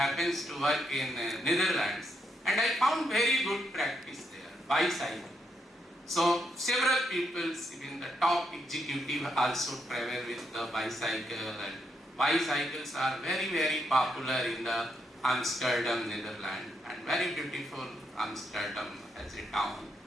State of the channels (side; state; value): both; normal; correlation 0.78